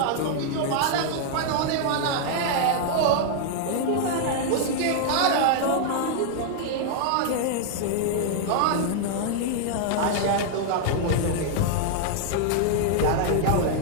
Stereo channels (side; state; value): both; different; correlation -0.01